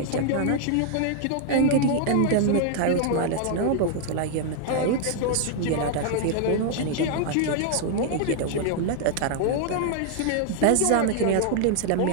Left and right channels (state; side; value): different; both; correlation 0.00